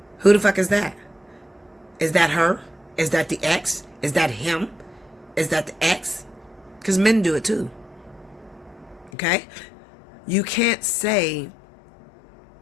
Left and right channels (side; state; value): right; drops out; at 9.1 s